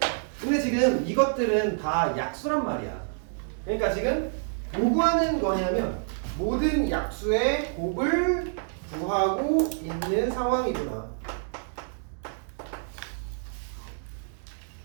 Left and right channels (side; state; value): left; silent; digital silence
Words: 근데 지금 이것들은 다 약수란 말이야. 그러니까 지금 뭐 구하는 거냐면 모든 약수의 곱을 구하고 있는 상황이구나.